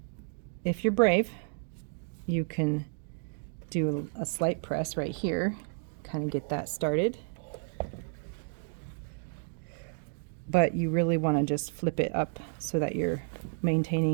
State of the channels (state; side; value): silent; left; 57 dB below the other